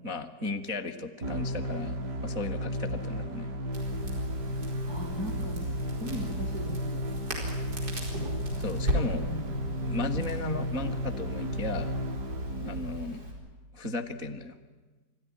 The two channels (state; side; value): late; left; 4.7 ms